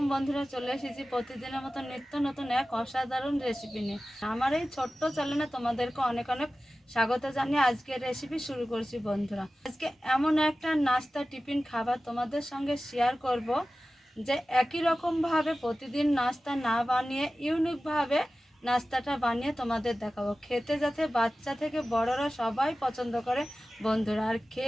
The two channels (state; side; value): normal; both; correlation 0.96